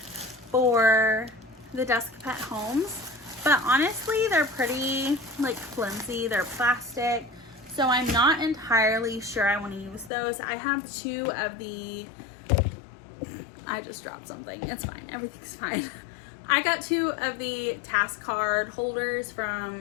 for the desk pet homes. But honestly, they're pretty flimsy. They're plastic. So I'm not entirely sure I want to use those. I have 2 of the, I just dropped something. It's fine. Everything's fine. I got 2 of the task card holders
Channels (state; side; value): drops out; right; at 10.1 s